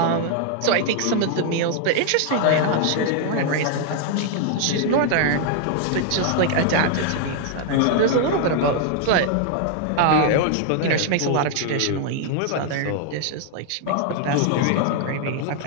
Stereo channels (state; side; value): different; both; correlation 0.00